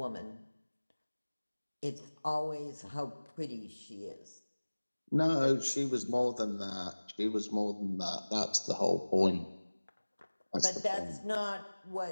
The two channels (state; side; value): inverted; both; correlation -1.00